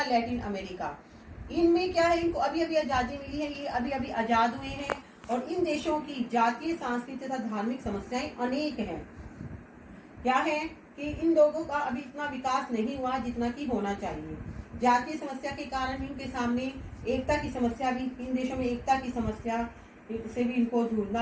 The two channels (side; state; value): both; identical; correlation 1.00